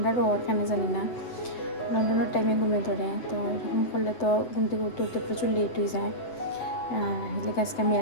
ওর কেন জানি না লন্ডনের টাইমে ঘুমে ধরে। তো এরকম করলে তো ঘুম থেকে উঠতে উঠতে প্রচুর লেট হয়ে যায়। আর এদিকে আজকে আমি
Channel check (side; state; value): right; late; 7.9 ms